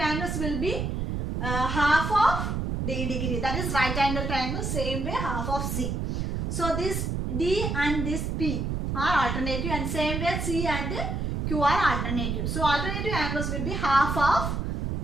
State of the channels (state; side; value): noise; right; rumble, 2 dB below the sound